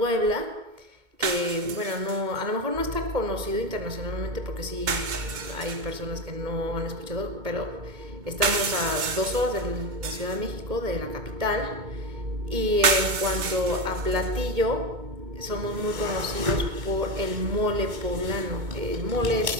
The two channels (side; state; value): left; late; 2.2 ms